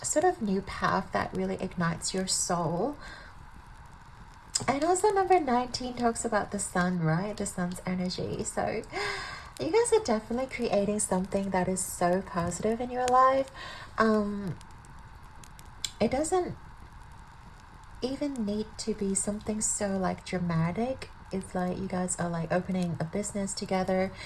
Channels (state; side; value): identical; both; correlation 1.00